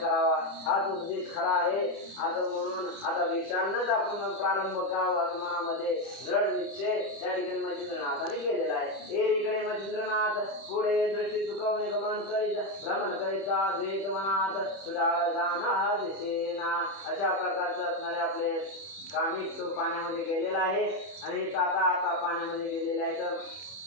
हाच उपदेश खरा आहे असं म्हणून आता भिक्षांनाच आपण प्रारंभ करावा असं मनामध्ये दृढ निश्चय त्या ठिकाणी मच्छिंद्रनाथाने केलेला आहे. एरीकडे मच्छिंद्रनाथ पुढे दृष्टी चुकवणे गमन करीत भ्रमण करीता द्वेत मनात सुधार जाना दिसेना. अशा प्रकारचं असणारे आपले कामिक तो पाण्यामध्ये गेलेला आहे आणि आता पाण्यामध्ये गेलेला आहे तर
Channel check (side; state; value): right; late; 30 ms